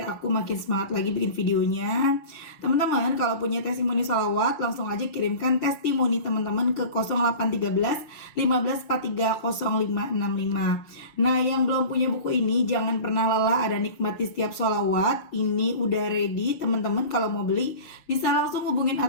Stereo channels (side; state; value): right; late; 6.4 ms